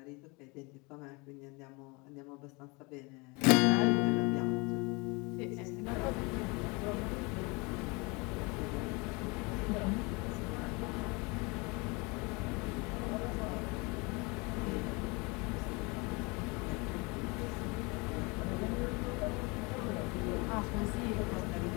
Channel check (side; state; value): right; quieter; 27.8 dB